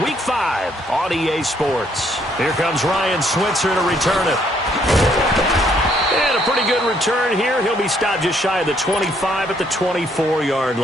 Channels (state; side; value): normal; both; correlation 0.68